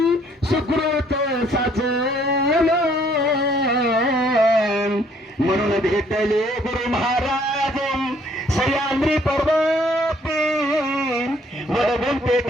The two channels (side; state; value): both; normal; correlation 0.63